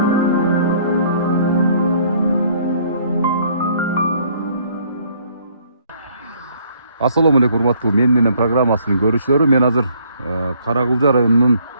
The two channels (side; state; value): both; inverted; correlation -0.62